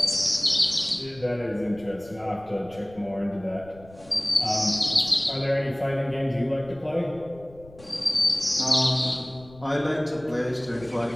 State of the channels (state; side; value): noise; left; rumble, 22 dB below the sound